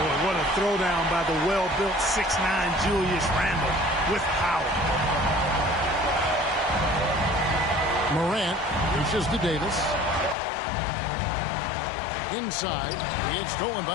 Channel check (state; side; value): drops out; right; at 10.4 s